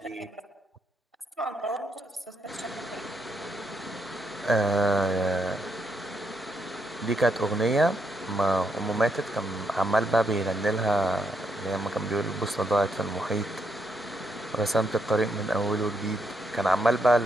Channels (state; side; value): normal; both; correlation 0.77